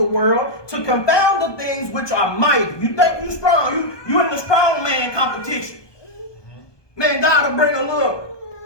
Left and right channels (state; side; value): late; right; 1.2 ms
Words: world to confound the things which are mighty. You think you strong. You in the strong man competition. Man, God will bring a little